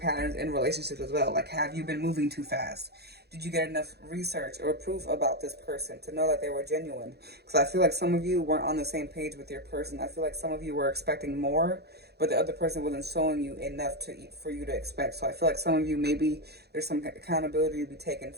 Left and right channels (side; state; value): left; late; 0.48 ms